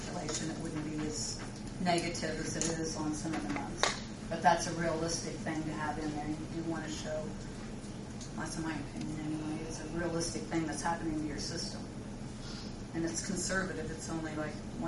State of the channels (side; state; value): both; identical; correlation 1.00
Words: it wouldn't be as negative as it is on some of the months. But that's a realistic thing to have in there. You want to show, that's in my opinion anyway, it's a realistic thing that's happening to your system. And it's conservative. It's only like